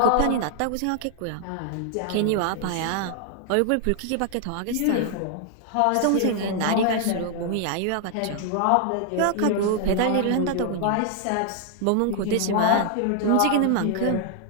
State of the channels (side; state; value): both; different; correlation 0.00